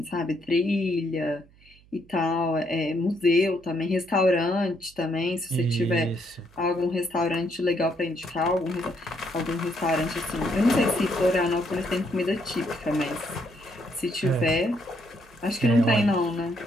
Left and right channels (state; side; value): noise; right; hum, 27 dB below the sound